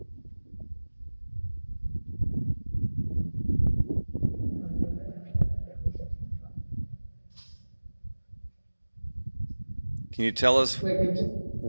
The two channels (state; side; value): inverted; both; correlation -1.00